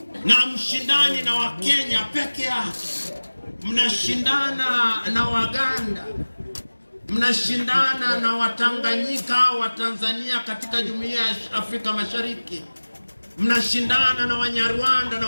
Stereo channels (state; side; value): inverted; both; correlation -1.00